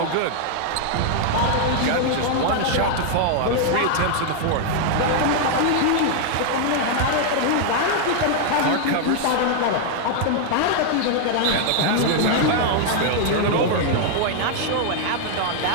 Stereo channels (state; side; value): different; both; correlation 0.00